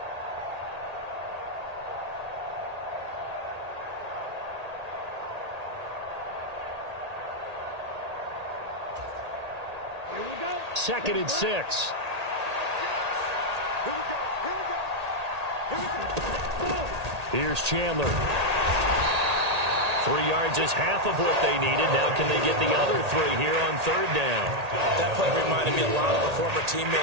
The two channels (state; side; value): late; left; 1.8 ms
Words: Here we go. 2nd and 6. Here's Chandler. 3 yards is half of what they needed. Now can they get the other 3 here on 3rd down? That play reminded me a lot of a former